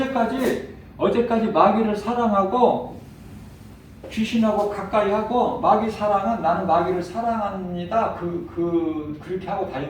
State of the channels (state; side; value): identical; both; correlation 1.00